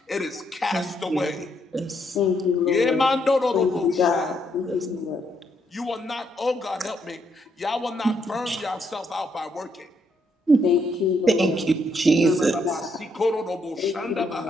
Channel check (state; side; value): normal; both; correlation 0.75